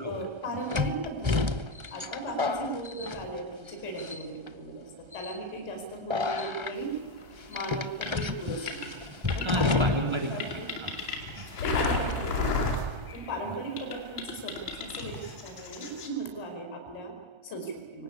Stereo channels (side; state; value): left; late; 1.3 ms